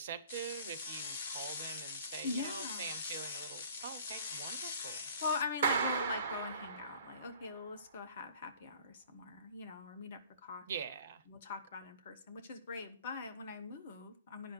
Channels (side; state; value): both; inverted; correlation -0.50